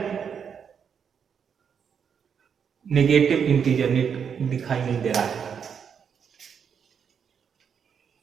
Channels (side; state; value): left; quieter; 7.2 dB